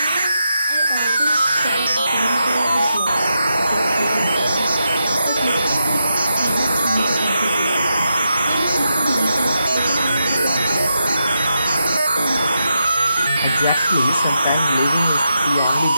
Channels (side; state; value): both; inverted; correlation -0.85